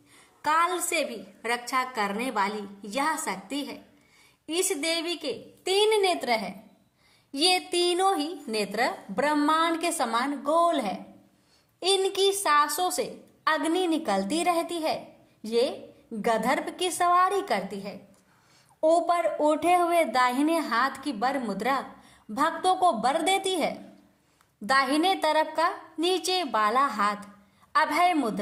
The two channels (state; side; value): identical; both; correlation 1.00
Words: काल से भी रक्षा करने वाली यह शक्ति है। इस देवी के 3 नेत्र है। ये तीनों ही नेत्र ब्रह्मांड के समान गोल है। इनकी सांसों से अग्नि निकलती रहती है। ये गंधर्व की सवारी करती है। ऊपर उठे हुए दाहिने हाथ की वर मुद्रा भक्तों को वर देती है। दाहिने तरफ का नीचे वाला हाथ अभय